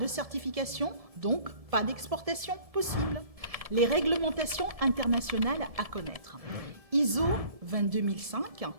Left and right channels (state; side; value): late; left; 1.7 ms